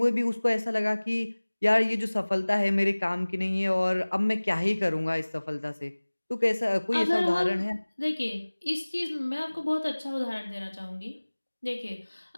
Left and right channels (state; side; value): inverted; both; correlation -1.00